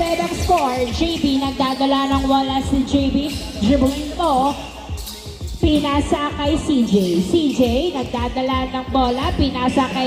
ang score. JB nagdadala ng wala si JB. Dribbling mo. Pinasa kay CJ. CJ nagdadala ng bola. Pinasa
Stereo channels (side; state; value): both; identical; correlation 1.00